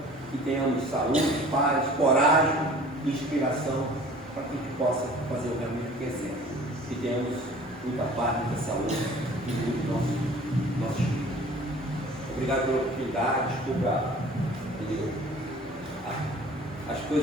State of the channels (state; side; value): normal; both; correlation 0.47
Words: que tenhamos saúde, paz, coragem, inspiração, para que a gente possa fazer o realmente que é certo. Que tenhamos muita paz, muita saúde e muito nosso espírito. Obrigado pela oportunidade, desculpa as